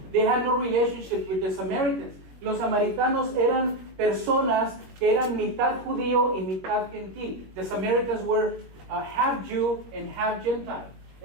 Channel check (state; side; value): late; left; 21 ms